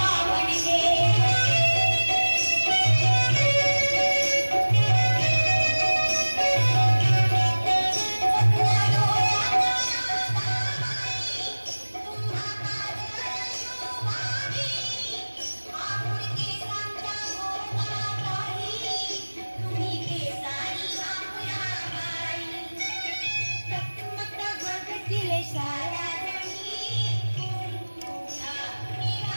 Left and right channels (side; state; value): both; inverted; correlation -1.00